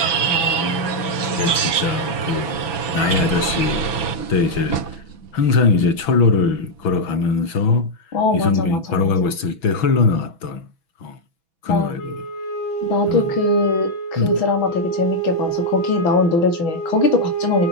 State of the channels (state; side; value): late; right; 6.1 ms